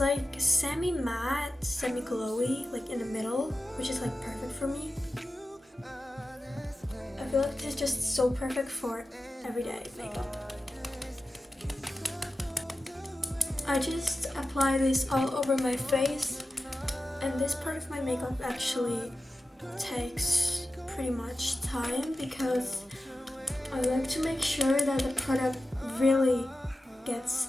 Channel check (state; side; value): normal; both; correlation 0.93